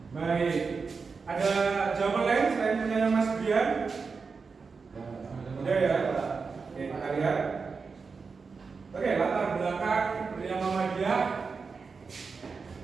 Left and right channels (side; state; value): left; quieter; 4.9 dB